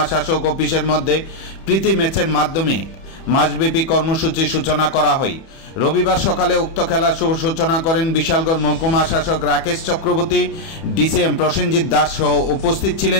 শাসক অফিসের মধ্যে প্রীতি ম্যাচের মাধ্যমে মাসব্যাপী কর্মসূচির সূচনা করা হয়। রবিবার সকালে উক্ত খেলার শুভ সূচনা করেন বিশালগড় মহকুমা শাসক রাকেশ চক্রবর্তী, ডিসিএম প্রসেনজিৎ দাস সহ উপস্থিত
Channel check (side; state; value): right; late; 31 ms